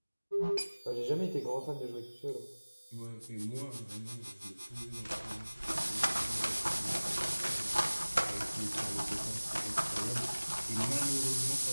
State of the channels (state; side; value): inverted; both; correlation -1.00